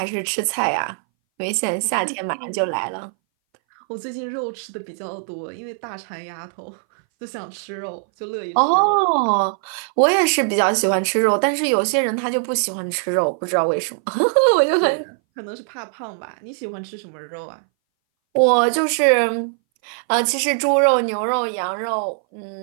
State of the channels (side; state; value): left; silent; 61 dB below the other